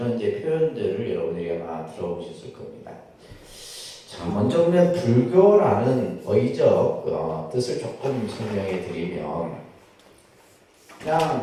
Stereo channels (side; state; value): both; identical; correlation 1.00